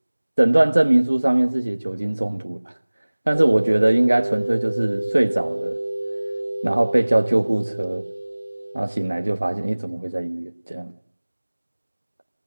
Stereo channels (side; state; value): both; inverted; correlation -1.00